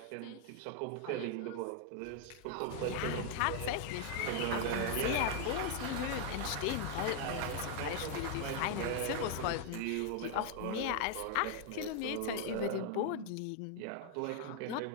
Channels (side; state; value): both; different; correlation 0.00